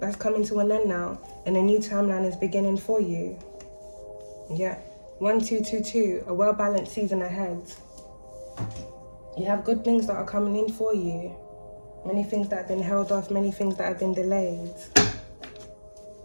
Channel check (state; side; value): inverted; both; correlation -1.00